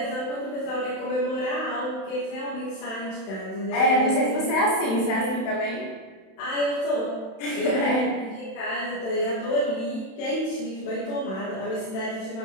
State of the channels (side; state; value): right; late; 31 ms